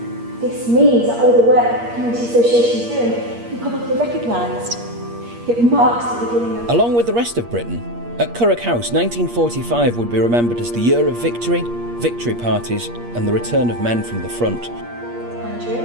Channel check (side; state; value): left; late; 8.5 ms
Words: This means that all the work that the Community Association is doing will be publicly recognised. It marks the beginning of... Along with the rest of Britain, at Currick House, 1945 would be remembered as the year of victory, victory parties and the return of men from the front.